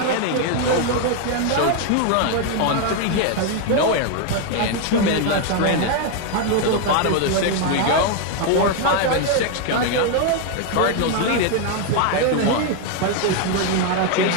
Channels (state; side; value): different; both; correlation 0.01